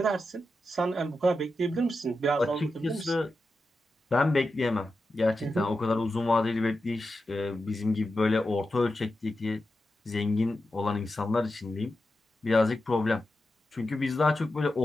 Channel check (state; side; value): normal; both; correlation 0.90